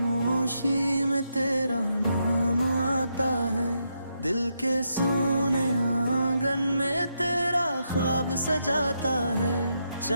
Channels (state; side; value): inverted; both; correlation -0.81